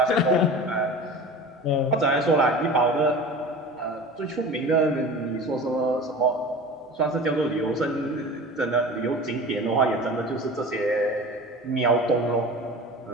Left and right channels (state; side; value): normal; both; correlation 0.36